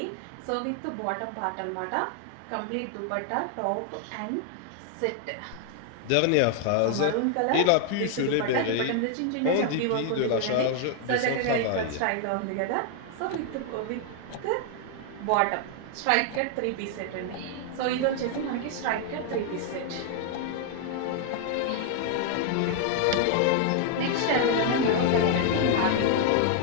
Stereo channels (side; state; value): both; different; correlation 0.00